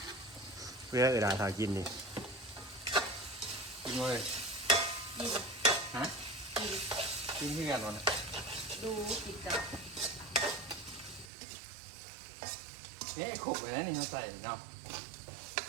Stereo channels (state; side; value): drops out; left; at 11.3 s